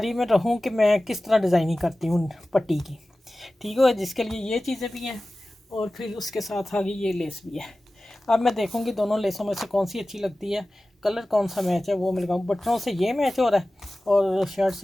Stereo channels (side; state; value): both; normal; correlation 0.96